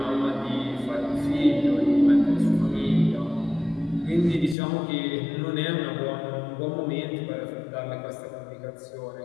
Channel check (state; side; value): drops out; right; at 4.5 s